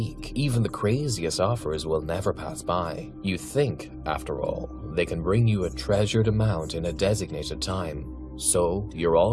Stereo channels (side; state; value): left; noise; hum, 28 dB below the sound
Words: even the craziest offers will never pass by. You think, after all, they can bring you a treasured amount in a designated time. So, you're